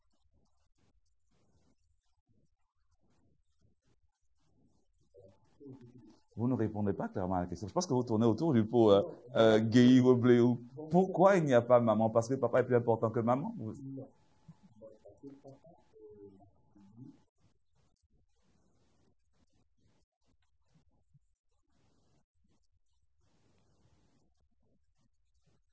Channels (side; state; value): both; identical; correlation 1.00